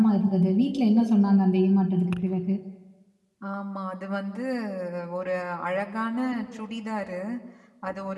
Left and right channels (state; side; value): identical; both; correlation 1.00